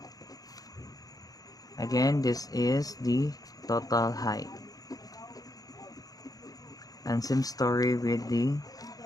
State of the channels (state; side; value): late; right; 0.18 ms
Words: Again, this is the total height. And same story with the